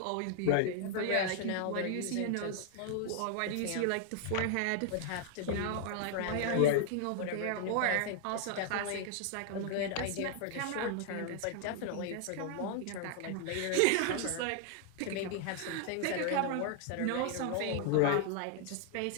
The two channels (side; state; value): both; different; correlation 0.00